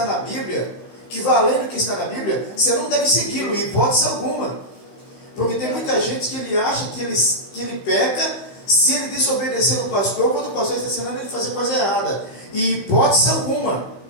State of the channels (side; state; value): right; late; 15 ms